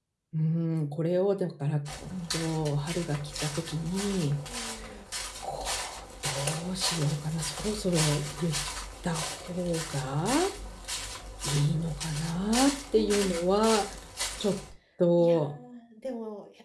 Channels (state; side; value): identical; both; correlation 1.00